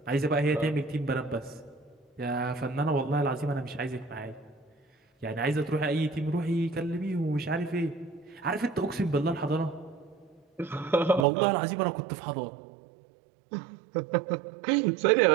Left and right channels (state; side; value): drops out; left; at 11.2 s